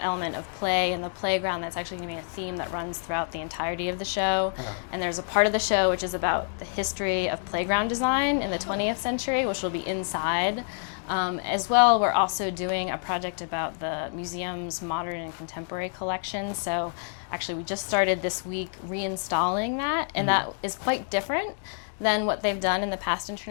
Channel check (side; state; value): right; silent; digital silence